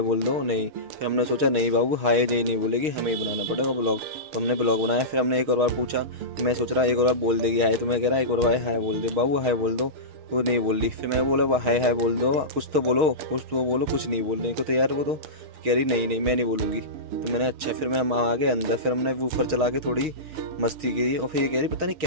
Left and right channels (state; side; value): late; left; 6.4 ms